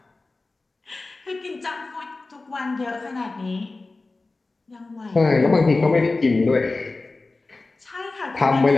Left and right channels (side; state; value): right; quieter; 3.4 dB